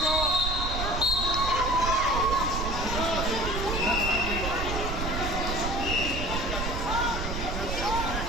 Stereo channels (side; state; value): right; noise; rumble, 3 dB below the sound